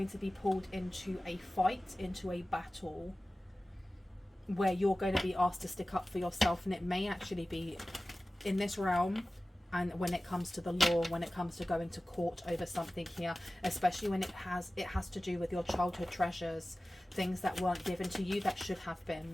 to be pulled into a fight, into a battle, where you're going to be asked to stick up for yourself. And it may actually be in this realm, and when it comes to the law, when it comes to going to court over something here, especially when it has to do with your childhood treasures, things that weren't given to you that should have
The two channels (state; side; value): normal; both; correlation 0.97